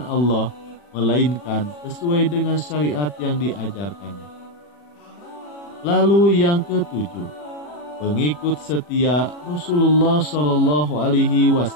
Allah, melainkan sesuai dengan syariat yang diajarkannya. Lalu yang ketujuh, pengikut setia Rasulullah Shallallahu Alaihi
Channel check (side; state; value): right; late; 40 ms